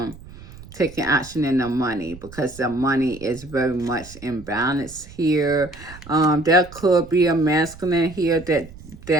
taking action in their money because their money is very much imbalanced here. There could be a masculine here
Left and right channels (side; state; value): right; noise; rumble, 18 dB below the sound